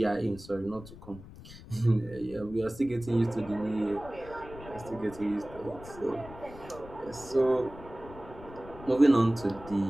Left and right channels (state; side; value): noise; left; rumble, 17 dB below the sound